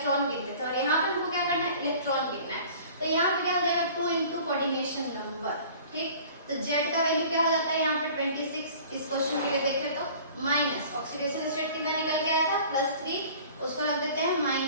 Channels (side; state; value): both; inverted; correlation -0.46